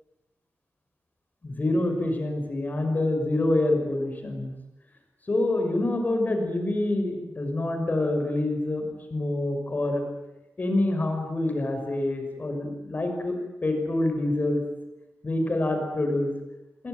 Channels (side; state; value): both; normal; correlation 0.92